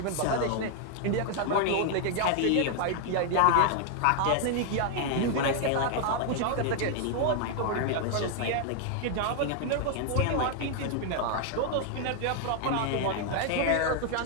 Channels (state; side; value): different; both; correlation 0.00